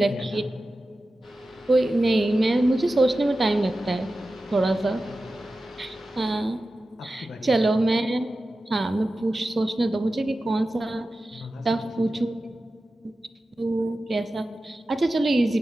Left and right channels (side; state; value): both; normal; correlation 0.94